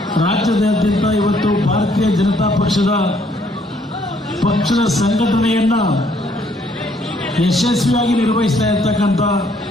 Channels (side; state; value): both; normal; correlation 0.66